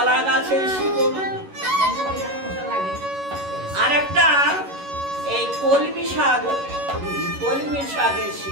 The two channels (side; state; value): left; late; 11 ms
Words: গাছের শিকড়, আর একটা এই কলমি শাকের